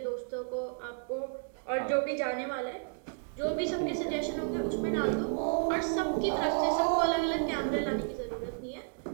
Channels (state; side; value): silent; left; 56 dB below the other